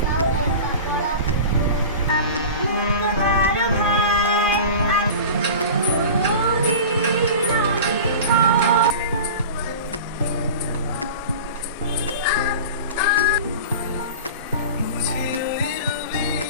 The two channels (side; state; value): both; inverted; correlation -0.34